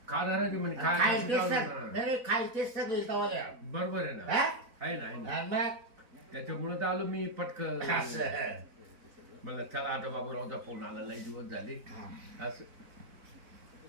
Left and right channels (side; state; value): left; late; 4.1 ms